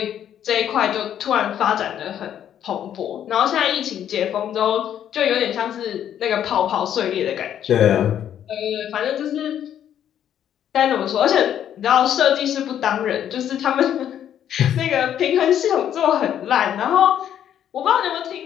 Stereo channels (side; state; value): right; quieter; 10.0 dB